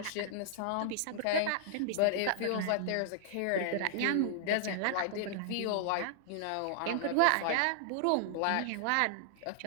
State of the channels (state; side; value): different; both; correlation -0.01